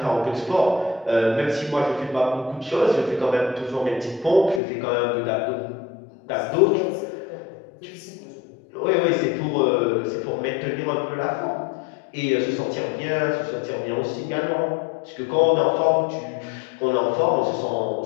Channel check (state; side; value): drops out; right; at 4.6 s